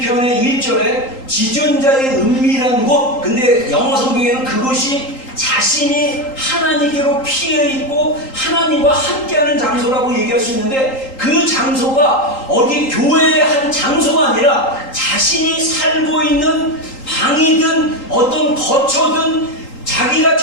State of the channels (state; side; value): late; right; 3.8 ms